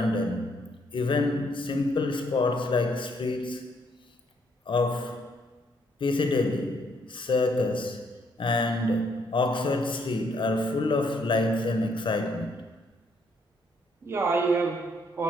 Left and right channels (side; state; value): both; normal; correlation 0.70